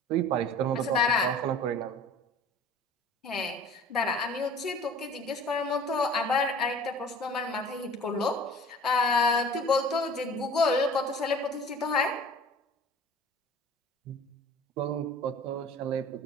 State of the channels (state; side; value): normal; both; correlation 0.45